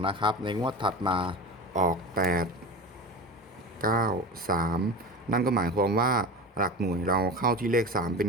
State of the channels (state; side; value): normal; both; correlation 0.30